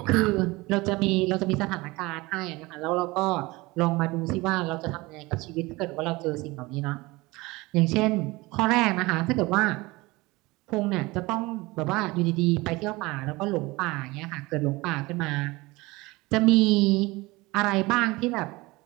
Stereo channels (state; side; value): quieter; left; 22.2 dB